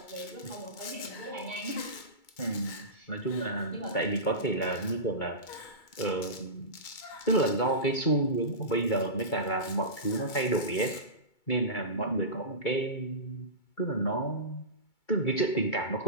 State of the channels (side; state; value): right; late; 2.3 ms